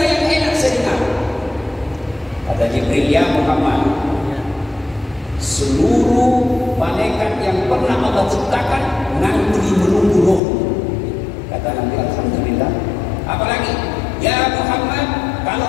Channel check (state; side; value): drops out; right; at 10.4 s